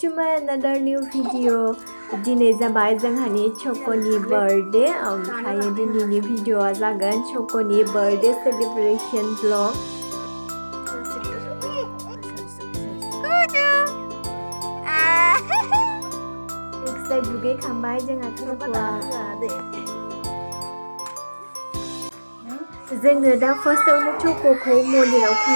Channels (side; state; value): both; inverted; correlation -1.00